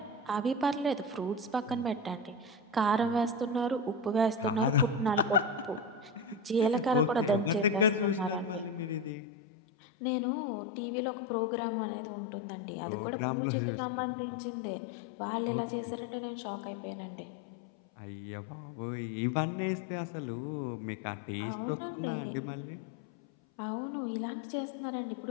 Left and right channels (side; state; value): right; drops out; at 9.1 s